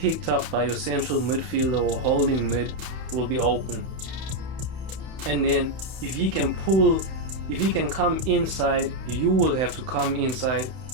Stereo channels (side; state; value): left; late; 31 ms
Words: up by your central midfielder or holding mid, will be open. And then if he can come inside, you will have to come inside,